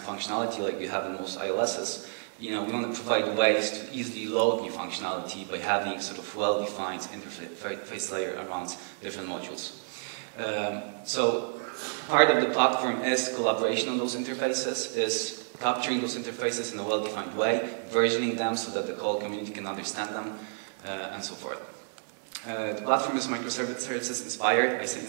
functionality like you have in most ILSs. We want to provide ways to easily load new functionality by having sort of well-defined interface layer around different modules. So part of the platform is collaboration on those interfaces, is capturing those interfaces in a well-defined way, versioning them so that the whole community can understand them, and so forth. The platform is microservices inspired. I say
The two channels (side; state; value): left; silent; digital silence